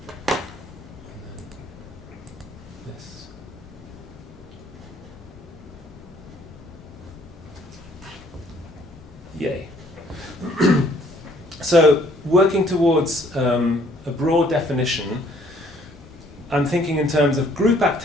this. Yay. So, working towards a broad definition, I'm thinking in terms of group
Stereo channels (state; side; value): normal; both; correlation 0.62